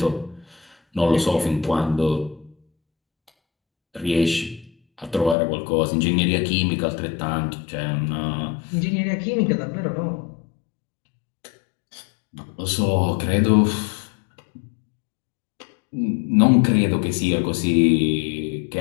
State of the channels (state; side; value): drops out; right; at 5.4 s